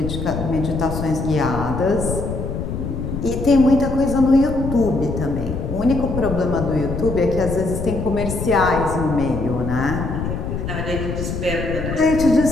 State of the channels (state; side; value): noise; left; rumble, 4 dB below the sound